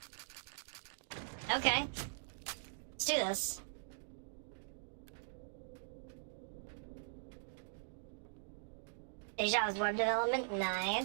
Okay. Let's do this. Deja's web development,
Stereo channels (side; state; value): left; silent; digital silence